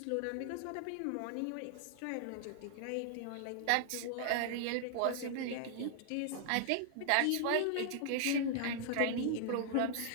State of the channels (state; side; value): different; both; correlation -0.01